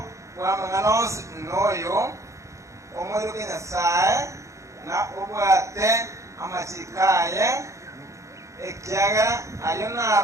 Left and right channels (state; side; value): late; left; 0.15 ms